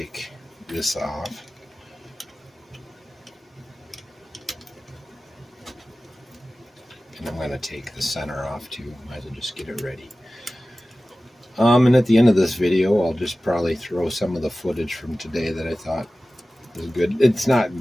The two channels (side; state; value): both; normal; correlation 0.96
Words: this off. And I'm going to take the center off too. Might as well just get it ready. And at the end of this video, I'll just probably throw some of the footage from today that I thought was good. It's not